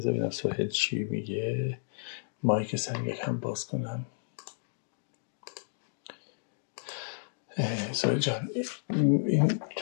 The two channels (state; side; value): silent; right; digital silence